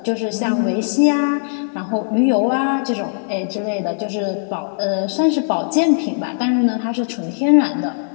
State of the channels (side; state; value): right; silent; digital silence